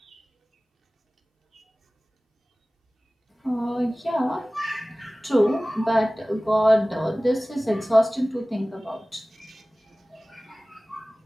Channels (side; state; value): both; normal; correlation 0.98